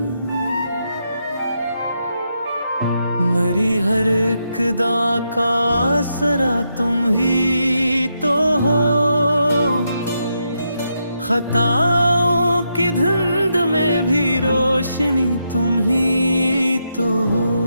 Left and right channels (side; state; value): both; inverted; correlation -0.82